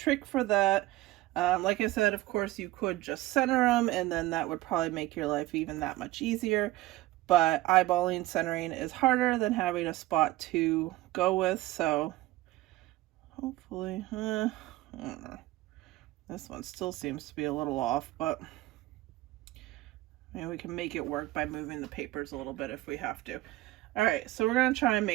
for that. Like I said, of course you could just center them, and then that would probably make your life even that much easier, but eyeballing centering is harder than having a spot to go with. So hopefully, I don't know. This one still seems to be a little off, but maybe we can make it work by moving the papers a little bit if we have to. All right, so we're going to try and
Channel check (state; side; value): quieter; left; 17.6 dB